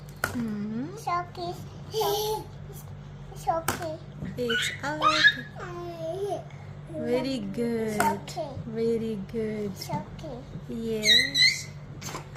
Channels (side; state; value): both; identical; correlation 1.00